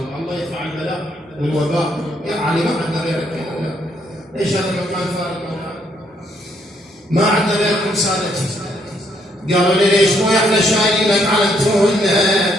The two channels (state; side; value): normal; both; correlation 0.71